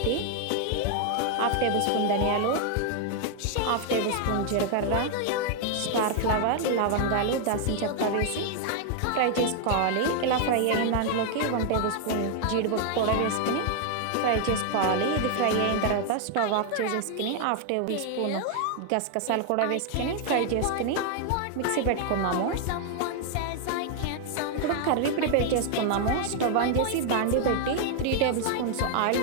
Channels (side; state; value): both; different; correlation 0.00